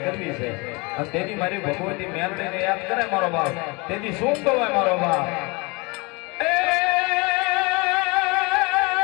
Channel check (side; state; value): right; quieter; 27.3 dB